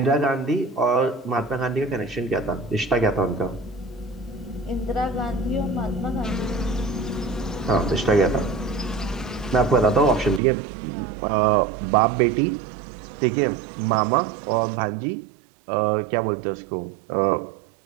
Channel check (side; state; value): left; drops out; at 10.4 s